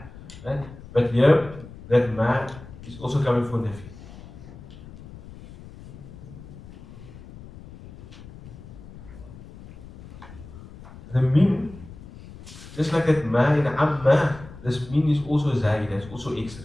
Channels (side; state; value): left; noise; rumble, 17 dB below the sound